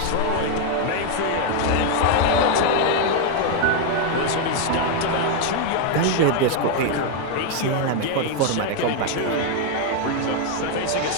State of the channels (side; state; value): both; different; correlation 0.01